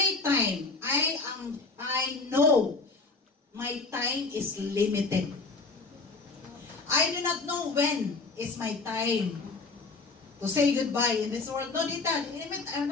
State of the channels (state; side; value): quieter; right; 3.9 dB